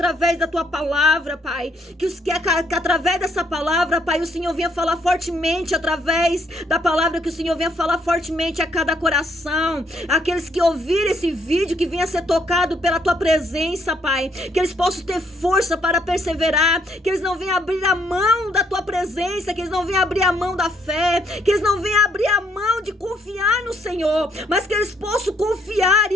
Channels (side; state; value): both; normal; correlation 0.70